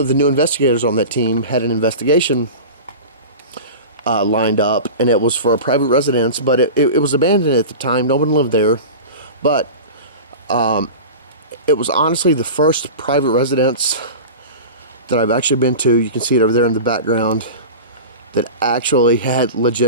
the new investigators on that team had an investigation lined up. And it was for a private residence, but it was abandoned at the time. No one lived there. But it was honestly the first private residence that I've actually been to. You can see it over there in the background, that actually had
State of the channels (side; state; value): both; inverted; correlation -0.31